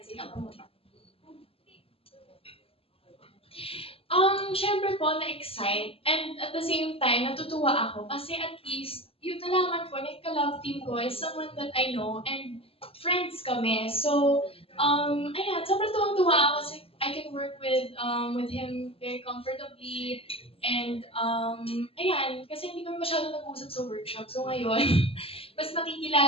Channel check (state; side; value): late; right; 0.27 ms